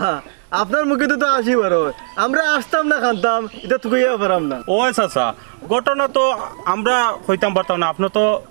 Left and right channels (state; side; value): silent; left; digital silence